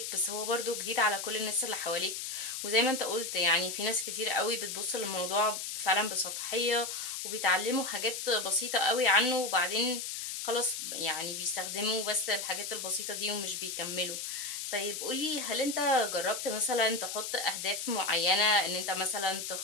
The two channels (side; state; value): left; noise; hiss, 5 dB below the sound